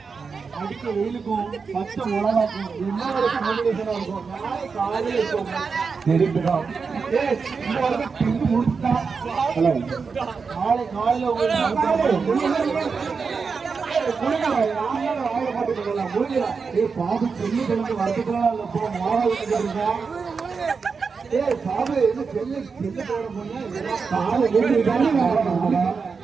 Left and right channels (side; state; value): left; quieter; 5.2 dB